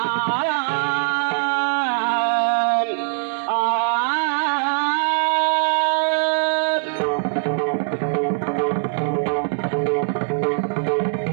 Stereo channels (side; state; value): left; silent; digital silence